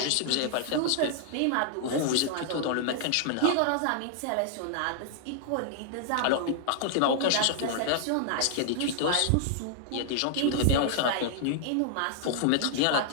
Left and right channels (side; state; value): both; different; correlation 0.00